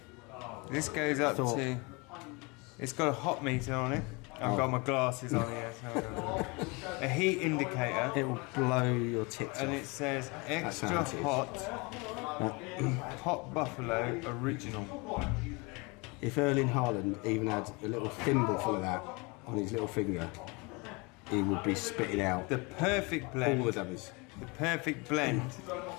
This goes up to. It's got a hot meter on it. I've got my glasses on here. So a heat indicator. It will blow your tits And off. it says extra how it is. hot buffalo original. If Erling Haaland even had a little thimble full of that on his little finger, he would be spitting out The perfect blend. all the dummies. The perfect blend,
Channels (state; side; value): quieter; right; 28.1 dB